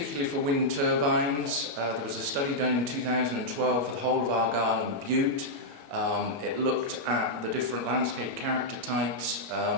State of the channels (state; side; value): late; left; 21 ms